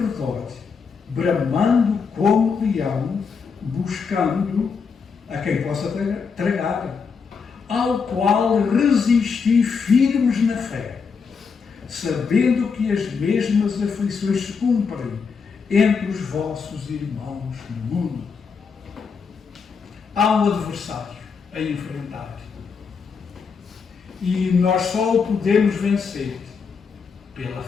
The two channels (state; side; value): quieter; right; 5.6 dB